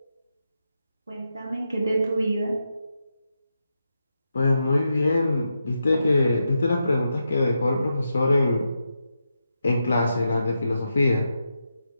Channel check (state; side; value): inverted; both; correlation -0.86